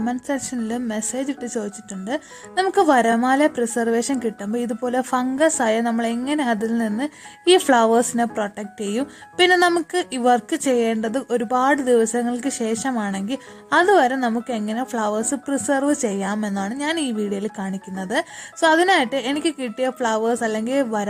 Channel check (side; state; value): both; identical; correlation 1.00